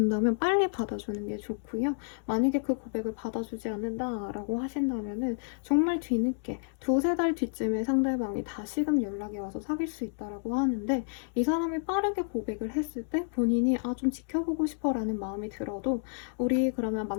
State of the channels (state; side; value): silent; right; 58 dB below the other